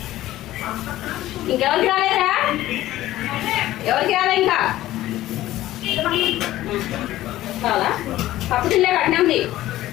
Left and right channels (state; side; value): quieter; right; 15.1 dB